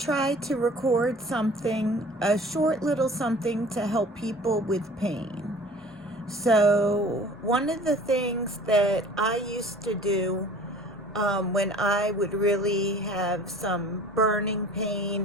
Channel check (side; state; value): both; normal; correlation 0.47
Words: to record something, a short little something to help people with pain. So one of the things that I used to do when I would really have some burning pain